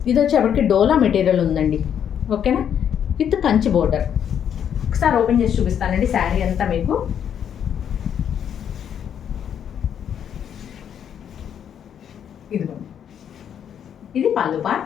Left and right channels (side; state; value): right; quieter; 8.8 dB